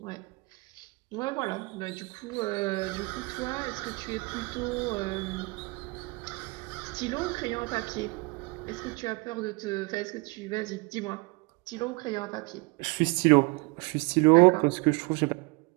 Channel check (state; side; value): quieter; left; 27.1 dB